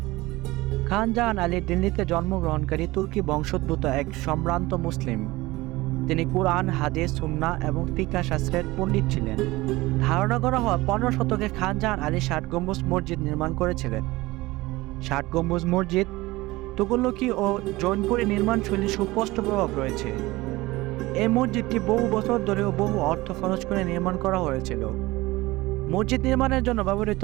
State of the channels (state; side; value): quieter; left; 20.0 dB